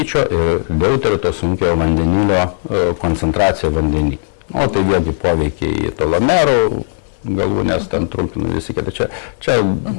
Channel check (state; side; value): silent; right; 69 dB below the other